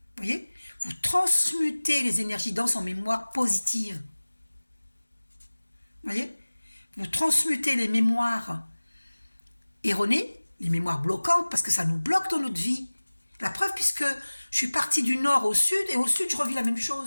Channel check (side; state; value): both; inverted; correlation -1.00